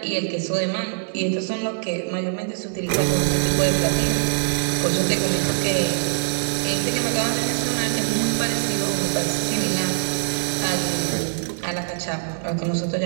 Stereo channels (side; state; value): left; silent; digital silence